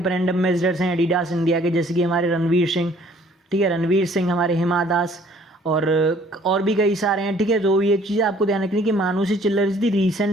एम्बेसडर्स हैं एडिडास इंडिया के, जैसे कि हमारे रणवीर सिंह, ठीक है, रणवीर सिंह, हमारे हिमा दास और भी कई सारे हैं, ठीक है। तो ये चीज़ आपको ध्यान रखनी कि मानुषी चिल्लर is the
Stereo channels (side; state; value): both; normal; correlation 0.58